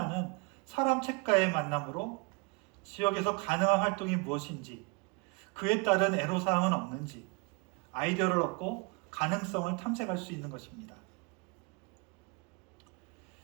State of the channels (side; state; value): left; quieter; 29.4 dB